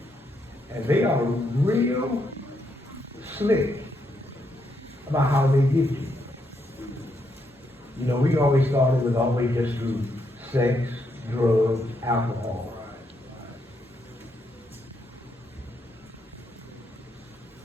And they are real slick about how they get you. You know, we always thought it was always just through sex, drugs, alcohol.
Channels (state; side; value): normal; both; correlation 0.78